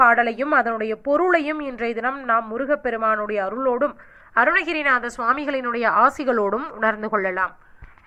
அதனுடைய பொருளையும் இன்றைய தினம் நாம் முருகப்பெருமானுடைய அருளோடும் அருணகிரிநாத சுவாமிகளினுடைய ஆசிகளோடும் உணர்ந்து கொள்ளலாம்.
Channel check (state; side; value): identical; both; correlation 1.00